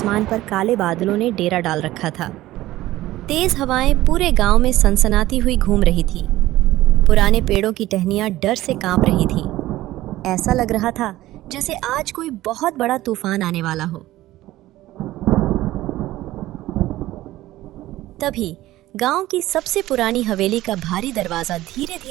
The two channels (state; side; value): quieter; left; 16.1 dB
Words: पर काले बादलों ने डेरा डाल रखा था। तेज हवाएं पूरे गांव में सनसनाती हुई घूम रही थी। पुराने पेड़ों की टहनियां डर से कांप रही थी। ऐसा लग रहा था जैसे आज कोई बहुत बड़ा तूफान आने वाला हो। तभी गांव की सबसे पुरानी हवेली का भारी दरवाजा धीरे